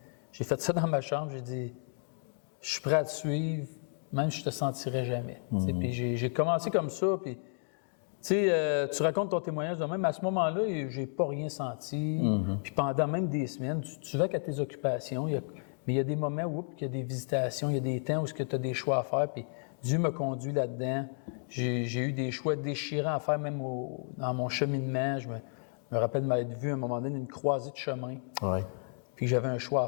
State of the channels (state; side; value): silent; right; digital silence